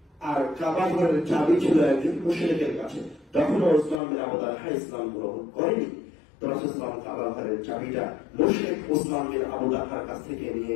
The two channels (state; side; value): drops out; right; at 4.0 s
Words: আর কাবা ঘরের চাবি ছিল একজন মুশরিকের কাছে। তখন ওসমান বিন আবু তালহা ইসলাম গ্রহণ করেনি। তো রাসূল সাল্লাল্লাহু আলাইহি ওয়াসাল্লাম কাবা ঘরের চাবিটা মুশরিক ওসমান বিন আবু তালহার কাছ থেকে নিয়ে